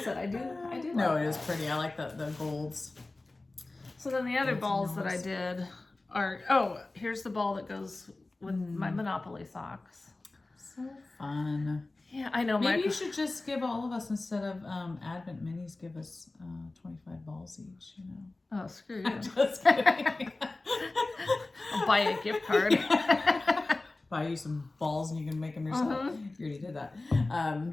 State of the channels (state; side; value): quieter; right; 3.1 dB